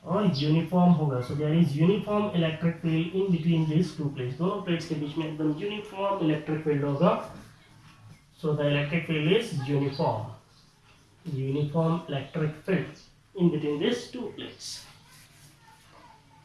और यूनिफॉर्म होगा. So there is uniform electric field in between this two plates. दोनों प्लेट्स के बीच में एकदम यूनिफॉर्म इलेक्ट्रिक फील्ड होगा. So the electric field is uniform electric field in between this two plates.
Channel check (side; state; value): both; identical; correlation 1.00